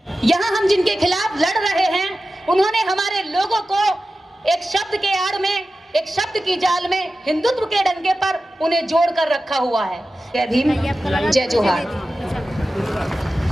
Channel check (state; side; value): normal; both; correlation 0.94